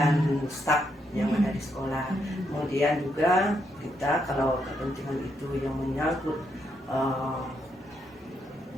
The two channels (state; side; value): normal; both; correlation 0.78